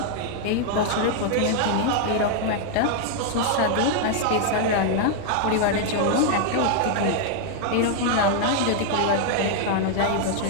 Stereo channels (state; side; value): different; both; correlation 0.00